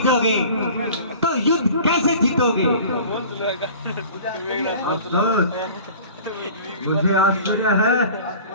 तो युद्ध कैसे जीतोगे? अफसोस, मुझे आश्चर्य है,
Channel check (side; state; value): both; inverted; correlation -0.43